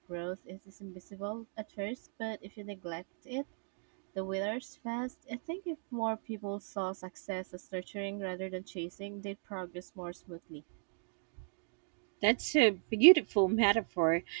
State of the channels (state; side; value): silent; left; 53 dB below the other